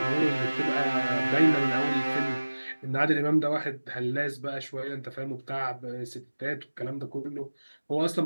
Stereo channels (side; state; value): both; inverted; correlation -1.00